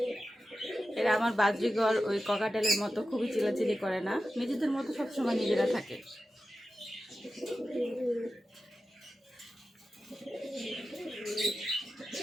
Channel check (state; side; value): normal; both; correlation 0.92